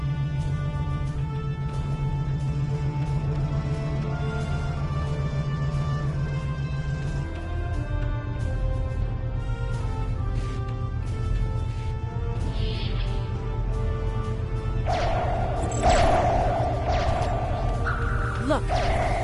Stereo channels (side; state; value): both; identical; correlation 1.00